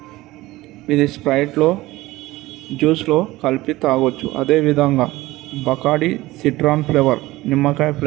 ఇది స్ప్రైట్లో జ్యూస్లో కలిపి తాగొచ్చు. అదేవిధంగా బకాడి సిట్రాన్ ఫ్లేవర్ నిమ్మకాయ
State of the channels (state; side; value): quieter; left; 18.5 dB